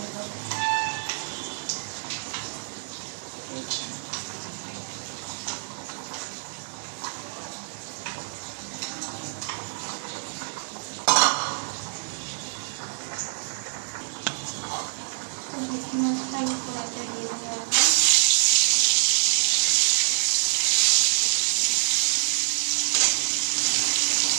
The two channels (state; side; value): silent; left; digital silence